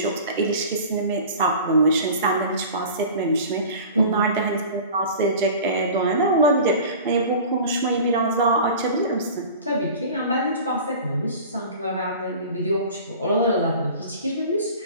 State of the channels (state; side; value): inverted; both; correlation -0.39